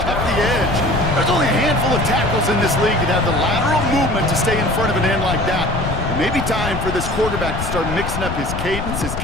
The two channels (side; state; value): left; noise; rumble, 5 dB below the sound